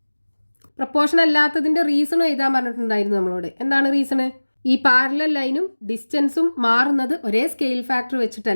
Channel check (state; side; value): inverted; both; correlation -1.00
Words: Proportion അല്ലാത്തതിൻ്റെ റീസണും എഴുതാൻ പറഞ്ഞിട്ടുണ്ടായിരുന്നു നമ്മളോട്. എന്താണ് റീസണ്? ഈ പാരലൽ ലൈനും ഡിസ്റ്റൻസും മാറുന്നത് ഒരേ സ്കെയിൽ ഫാക്ടർ